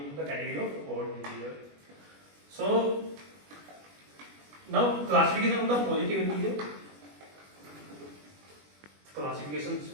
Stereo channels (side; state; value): left; late; 21 ms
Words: into the category of odd integer. So now classification of the positive integer. Classifications